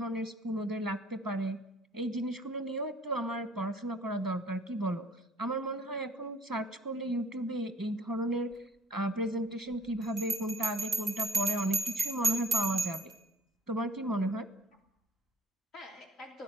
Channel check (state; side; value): normal; both; correlation 0.54